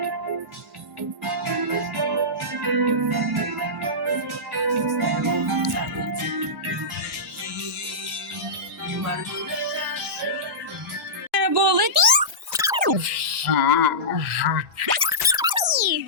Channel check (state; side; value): normal; both; correlation -0.16